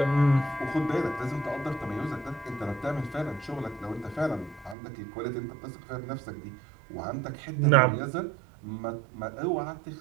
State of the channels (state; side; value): drops out; left; at 4.8 s